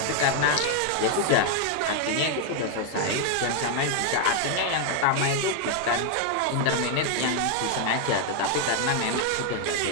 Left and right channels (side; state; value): both; different; correlation 0.00